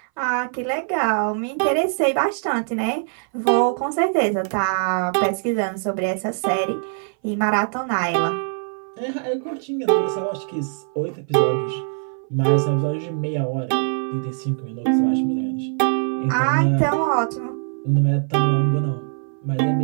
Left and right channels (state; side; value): silent; left; 60 dB below the other